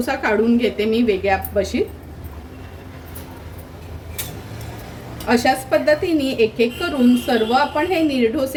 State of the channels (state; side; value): identical; both; correlation 1.00